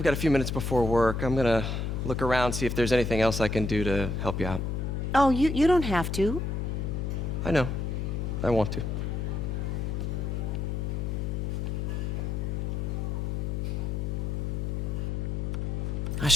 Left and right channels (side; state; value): left; noise; hum, 1 dB below the sound